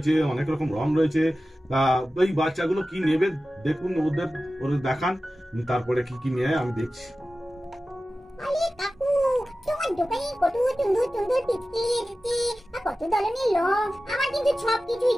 অনেক রকম রং রয়েছে। ওই বাচ্চাগুলো কি নেবে দেখুন, ওদের দেখান, তারপরে কি কি নেয় আমি দেখছি। আরে কাকু, তোমার দোকানে কত সুন্দর সুন্দর পিচকিরি এসেছে, আর কত ধরনের রং। আমার কিন্তু সব কিছুই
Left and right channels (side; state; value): both; normal; correlation 0.95